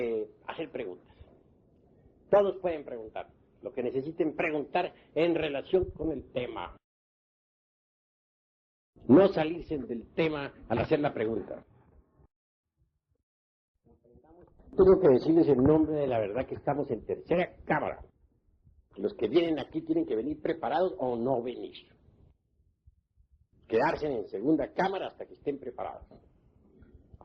hacer preguntas. Todos pueden preguntar lo que necesiten preguntar en relación con el tema. No salirse del tema al hacer la pregunta. Tengo que decirles en nombre de la verdad que estamos en tercera cámara. Los que vienen aquí tienen que venir preparados o no venir. Quedarse en segunda cámara hasta que estén preparados.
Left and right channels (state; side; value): identical; both; correlation 1.00